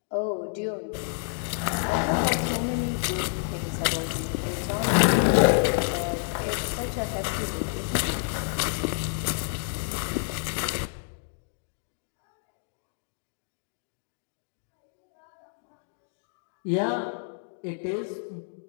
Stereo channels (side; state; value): right; silent; digital silence